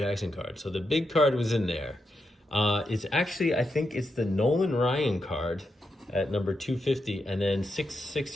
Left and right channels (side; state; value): both; normal; correlation 0.84